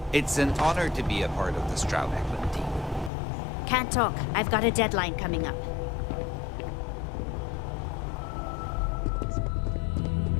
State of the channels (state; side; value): drops out; right; at 3.1 s